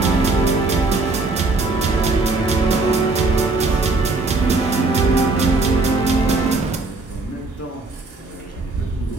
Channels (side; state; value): left; quieter; 3.4 dB